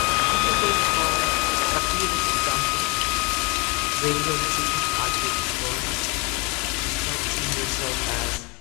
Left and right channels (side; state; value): right; quieter; 29.6 dB